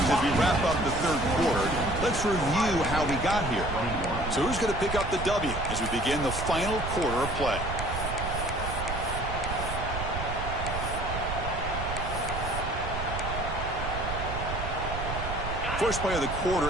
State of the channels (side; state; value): right; noise; rumble, 5 dB below the sound